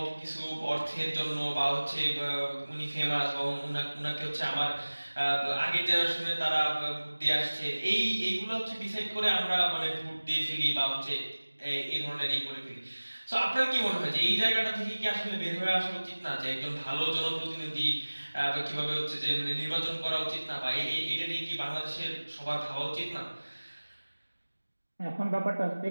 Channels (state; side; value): inverted; both; correlation -1.00